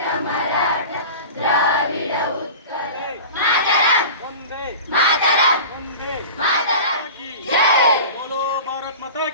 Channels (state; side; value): inverted; both; correlation -0.35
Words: Maratha Dravida ಉತ್ಕಲ Vande Mataram Mataram ki jai. Bolo Bharat Mata